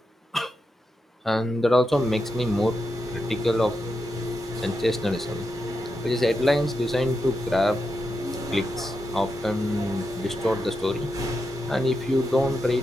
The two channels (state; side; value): normal; both; correlation 0.86